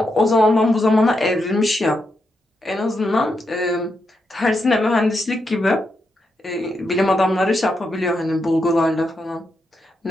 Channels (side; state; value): both; normal; correlation 0.83